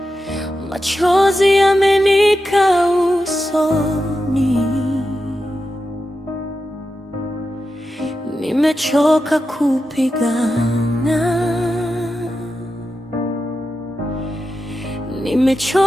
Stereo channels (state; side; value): normal; both; correlation 0.90